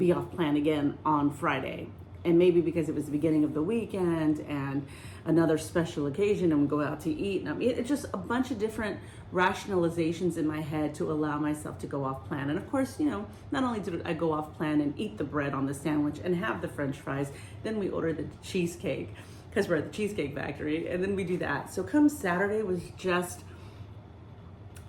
off plan again on Friday. And maybe because it was the beginning of the weekend and another special occasion and we go out to eat. And it's just a bunch of different rationalizations in my head to allow myself to go off plan. And of course, not only did I go off plan and eat the bread on the sandwich and have the French fries, then we ordered the cheesecake because we're at the Cheesecake Factory, and then we do that. So come Saturday was just,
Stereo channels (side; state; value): both; identical; correlation 1.00